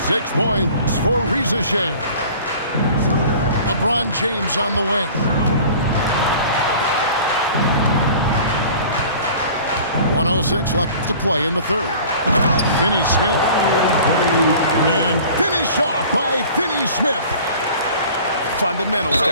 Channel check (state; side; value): inverted; both; correlation -0.45